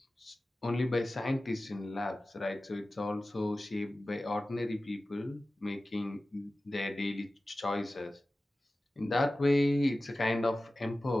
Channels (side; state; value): both; normal; correlation 0.96